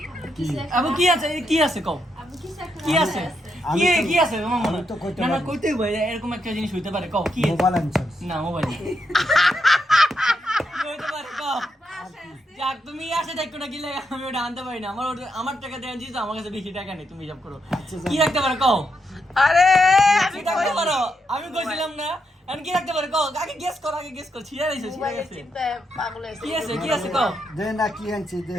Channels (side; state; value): both; normal; correlation 0.81